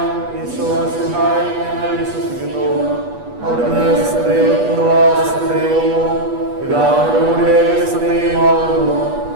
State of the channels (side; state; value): left; late; 8.3 ms